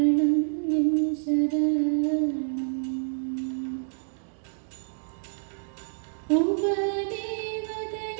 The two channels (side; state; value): left; silent; digital silence